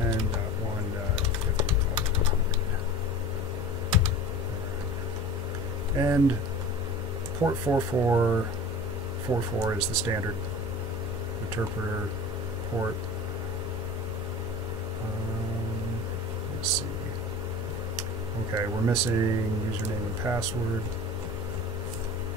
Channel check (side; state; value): both; normal; correlation 0.38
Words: 10.1.50. And port 4444 is the standard interpreter port. Let's see. Okay, we're missing username and password.